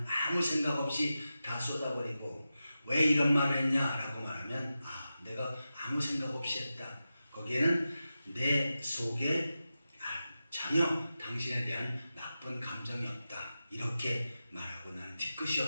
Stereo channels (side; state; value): both; inverted; correlation -0.92